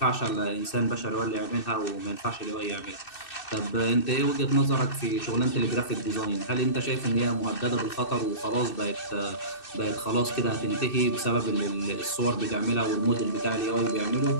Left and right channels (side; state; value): right; late; 2.6 ms